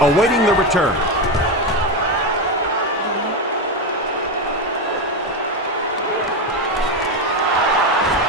awaiting the return.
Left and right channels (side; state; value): both; normal; correlation 0.13